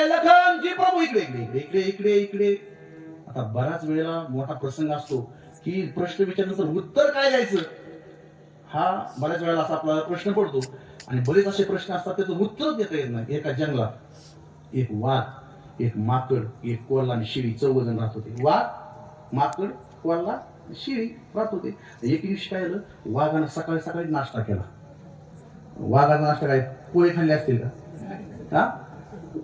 लखन जी प्रभू इकडे इकडे इकडे इकडे इकडे. आता बराच वेळेला मोठा प्रसंग असतो की प्रश्न विचारल्यानंतर उत्तर काय द्यायचं हा बऱ्याच वेळेला असा आपला प्रश्न पडतो. आणि बरेच असे प्रश्न असतात त्याचं उत्तर देता येत नाही. एका जंगलात एक वाघ, एक माकड, एक कोल्हा आणि शिळी 14 जण राहत होते. वाघ, माकड, कोल्हा, शिळी राहत होते. एक दिवशी काय झालं, वाघानं सकाळी सकाळी नाश्ता केला. वाघाचा नाश्ता काय, पोहे खाल्ले असतील का?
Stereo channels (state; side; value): identical; both; correlation 1.00